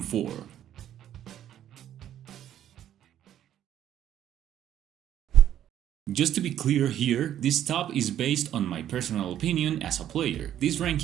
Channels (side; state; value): left; quieter; 11.1 dB